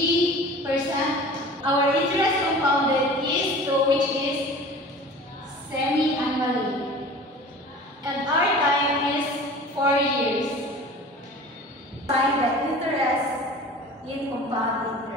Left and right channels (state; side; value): normal; both; correlation 0.40